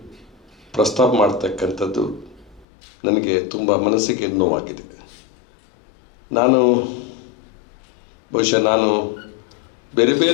ಪ್ರಸ್ತಾಪ ಮಾಡ್ತಕ್ಕಂಥದ್ದು ನನಗೆ ತುಂಬ ಮನಸ್ಸಿಗೆ ನೋವಾಗಿದೆ. ನಾನು ಬೇರೆ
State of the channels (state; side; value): drops out; right; at 2.7 s